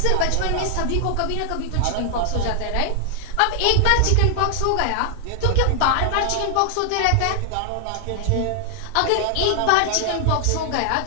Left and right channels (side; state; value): both; different; correlation 0.00